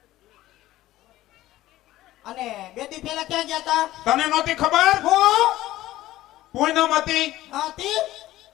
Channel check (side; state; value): right; quieter; 15.5 dB